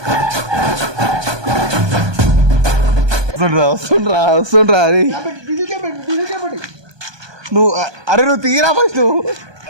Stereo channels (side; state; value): left; late; 1.2 ms